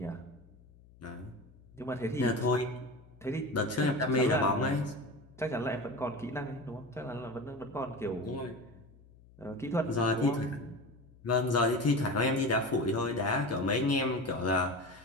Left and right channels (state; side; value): noise; left; hum, 25 dB below the sound